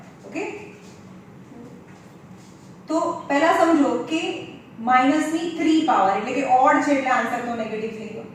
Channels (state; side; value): identical; both; correlation 1.00